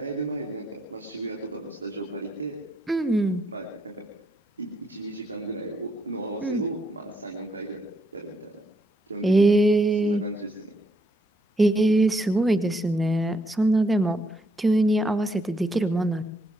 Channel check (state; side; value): normal; both; correlation 0.75